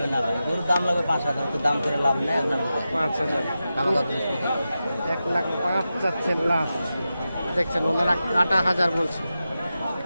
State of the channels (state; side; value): inverted; both; correlation -0.91